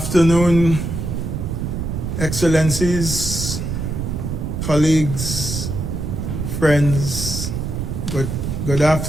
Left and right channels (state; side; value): noise; right; rumble, 3 dB below the sound